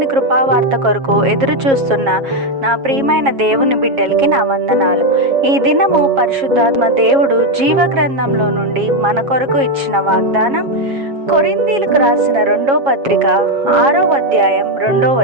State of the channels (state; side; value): late; left; 7.3 ms